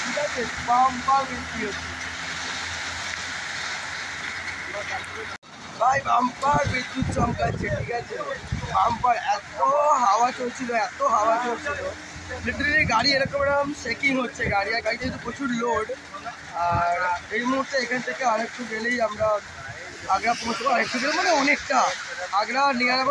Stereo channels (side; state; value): both; identical; correlation 1.00